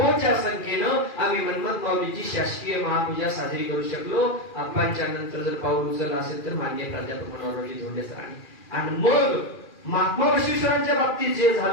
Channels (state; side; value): late; right; 2.4 ms